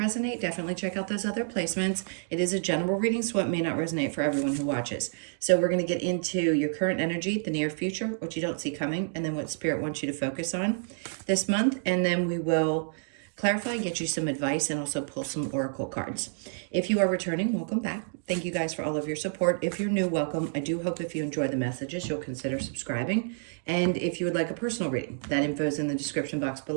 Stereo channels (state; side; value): silent; left; digital silence